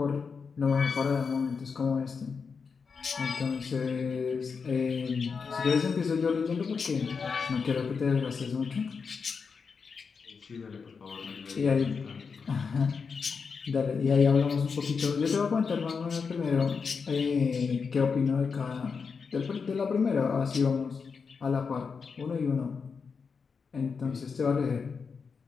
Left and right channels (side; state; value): right; quieter; 5.5 dB